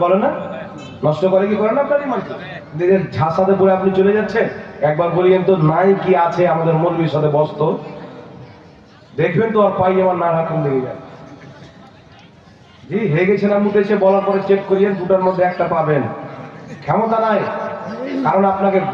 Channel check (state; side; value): identical; both; correlation 1.00